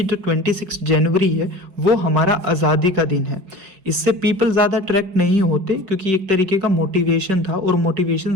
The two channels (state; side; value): late; left; 5.2 ms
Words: जो 26 जनवरी है वो हमारा आज़ादी का दिन है। इससे पीपल ज़्यादा अट्रैक्ट नहीं होते क्योंकि एक तरीके का मोटिवेशन था और मोटिवेशन